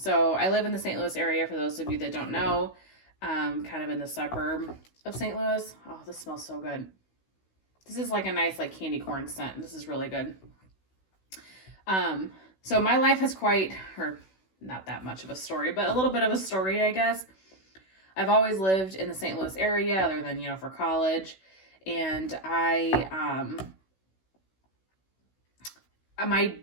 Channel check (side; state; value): right; late; 16 ms